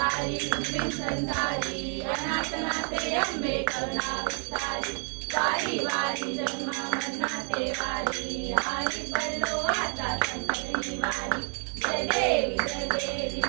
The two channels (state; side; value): quieter; left; 39.4 dB